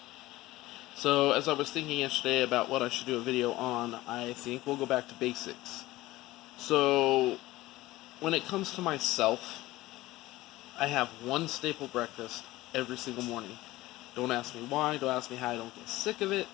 So, as I was thinking yesterday about what I should do a video on, I think we'll go back to basics. So, when it comes to myself, I have one staple breakfast every single morning. Don't ask me why, don't ask me how I don't get sick of it.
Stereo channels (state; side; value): quieter; right; 17.8 dB